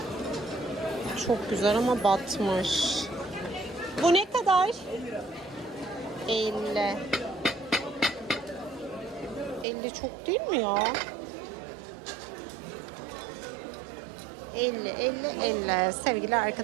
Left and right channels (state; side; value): drops out; left; at 9.7 s